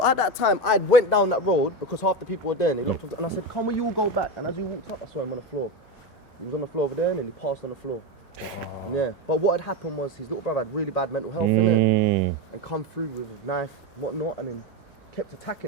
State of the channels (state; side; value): normal; both; correlation 0.16